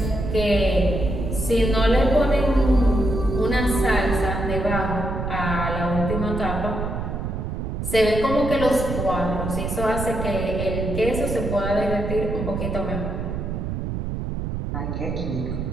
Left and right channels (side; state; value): right; noise; rumble, 3 dB below the sound